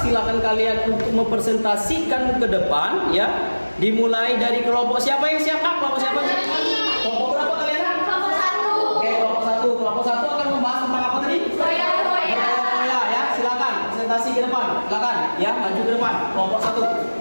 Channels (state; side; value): inverted; both; correlation -1.00